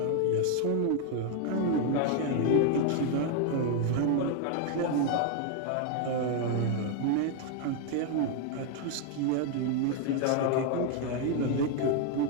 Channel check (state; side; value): different; both; correlation 0.00